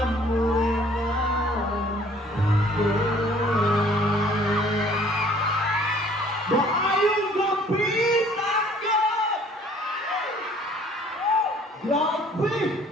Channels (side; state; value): both; normal; correlation 0.56